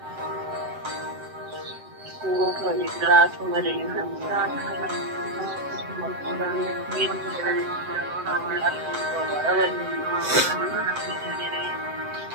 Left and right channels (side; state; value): left; late; 7.7 ms